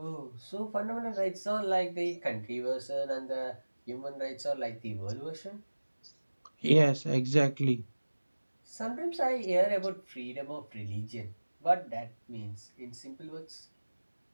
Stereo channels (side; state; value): both; inverted; correlation -1.00